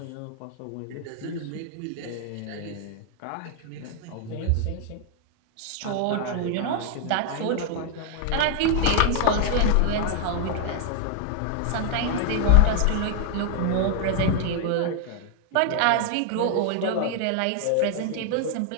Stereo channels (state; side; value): different; both; correlation 0.00